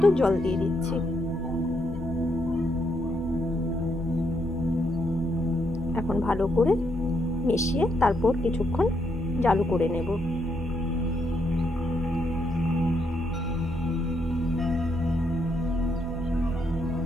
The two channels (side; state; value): left; noise; hum, 17 dB below the sound